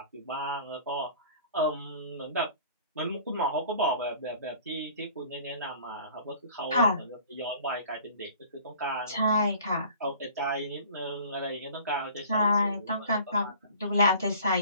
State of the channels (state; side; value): inverted; both; correlation -0.47